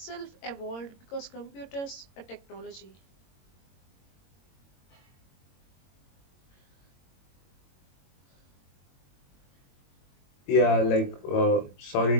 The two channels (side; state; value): right; late; 22 ms